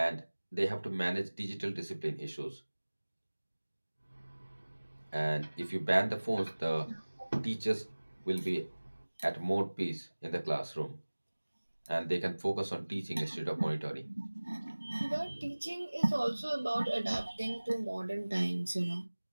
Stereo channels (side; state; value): both; inverted; correlation -1.00